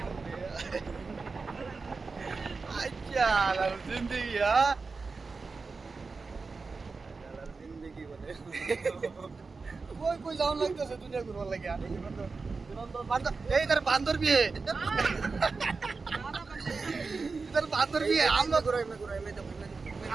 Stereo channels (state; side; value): quieter; left; 4.3 dB